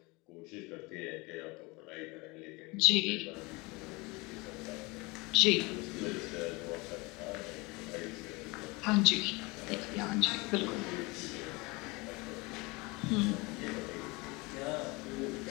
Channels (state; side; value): quieter; right; 25.3 dB